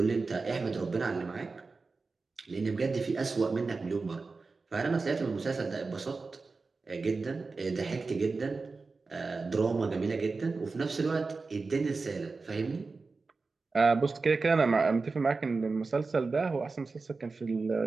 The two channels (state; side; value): quieter; left; 4.1 dB